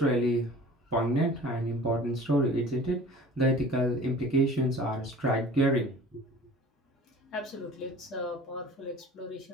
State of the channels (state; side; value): normal; both; correlation 0.44